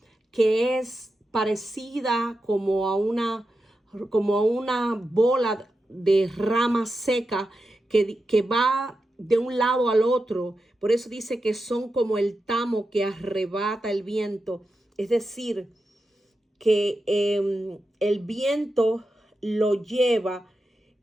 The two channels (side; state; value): both; normal; correlation 0.89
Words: que es parecida como a una bola de rama seca que va de un lado al otro. Por eso dice que son como el tamo que arrebata el viento. Es decir, que el viento lo lleva,